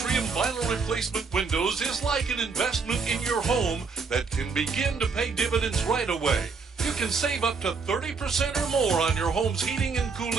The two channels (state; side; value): quieter; left; 4.9 dB